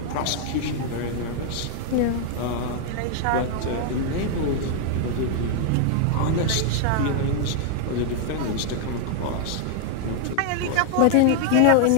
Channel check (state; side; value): different; both; correlation 0.00